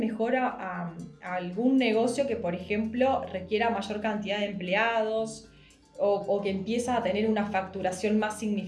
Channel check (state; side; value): identical; both; correlation 1.00